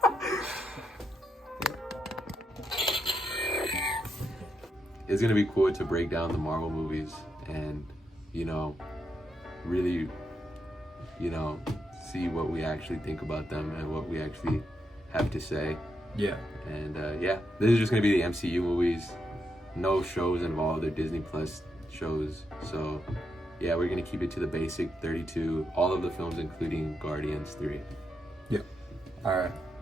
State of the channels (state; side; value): normal; both; correlation 0.82